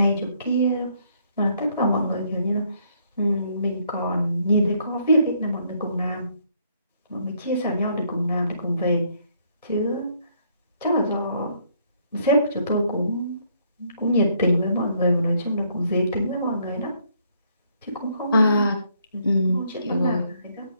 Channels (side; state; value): both; inverted; correlation -0.69